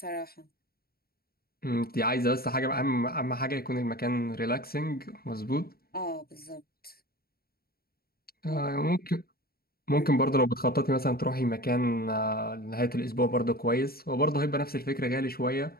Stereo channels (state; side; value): late; right; 0.44 ms